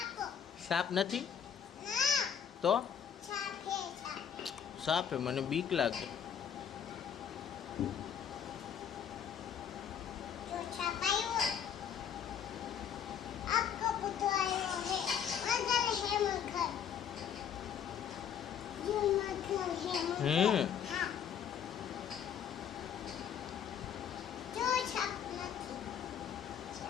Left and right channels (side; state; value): right; quieter; 8.3 dB